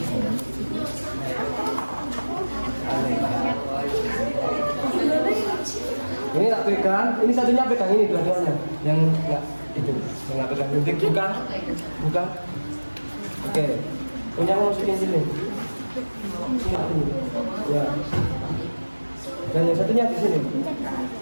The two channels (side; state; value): both; inverted; correlation -1.00